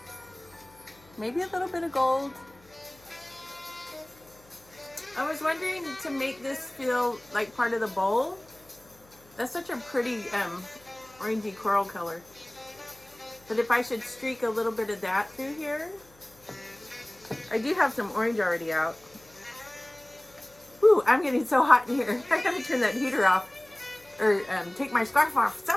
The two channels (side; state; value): left; noise; hum, 28 dB below the sound